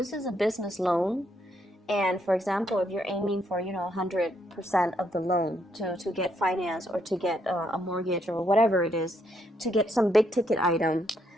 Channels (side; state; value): both; normal; correlation 0.74